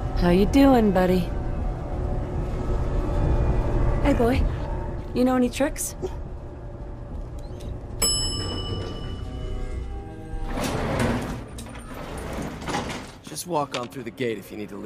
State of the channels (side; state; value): both; identical; correlation 1.00